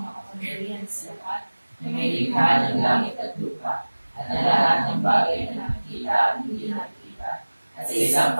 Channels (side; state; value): both; inverted; correlation -1.00